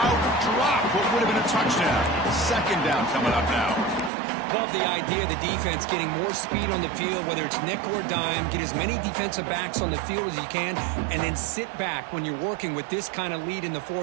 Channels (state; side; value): drops out; left; at 4.1 s